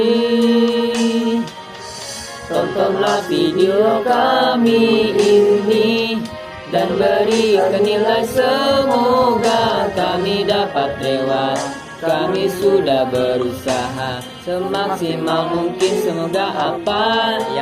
tontonlah video kami ini dan berikan nilai, semoga kami dapat lewat. Kami sudah berusaha semaksimal mungkin, semoga apa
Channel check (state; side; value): identical; both; correlation 1.00